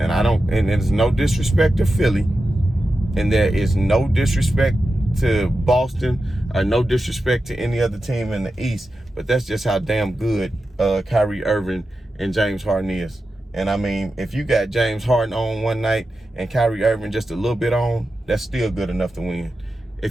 there's no disrespect to Philly, and there is no disrespect to Boston, or no disrespect to any other team in the East, but that's just how damn good Kyrie Irving and James Harden is. And I mean, if you got James Harden on one night and Kyrie Irving just a little bit on, that's still good enough to win.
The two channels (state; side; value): normal; both; correlation 0.91